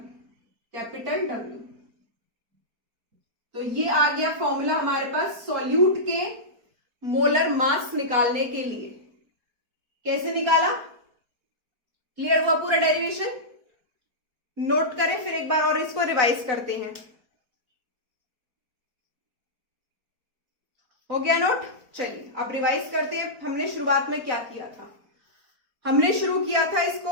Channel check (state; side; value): late; left; 4.5 ms